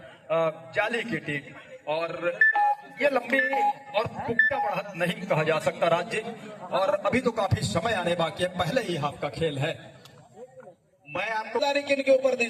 जाली की टीम। और ये लंबी और पुख्ता बढ़त नहीं कहा जा सकता राज्य, और अभी तो काफी समय आने बाकी है, पहले ही हाफ का खेल है। मैं आपको किन के ऊपर दी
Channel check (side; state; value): both; identical; correlation 1.00